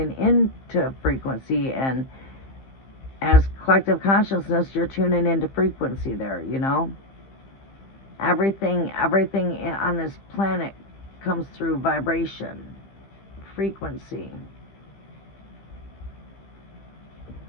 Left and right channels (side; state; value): right; late; 15 ms